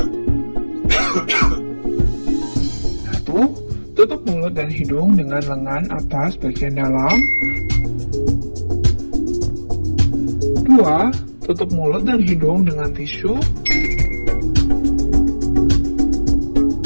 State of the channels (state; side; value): inverted; both; correlation -1.00